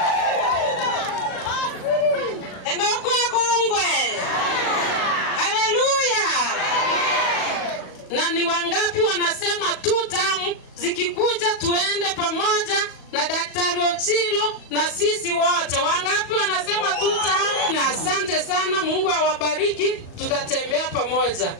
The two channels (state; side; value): late; right; 37 ms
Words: Enoko kongwe. Haleluya. Na ni wangapi wanasema tutamu zikikuja tuende pamoja na Daktari Ochilo na sisi wote? Wangapi wanasema tutamu? Na asante sana, Mungu awabariki, tutatembea pamoja.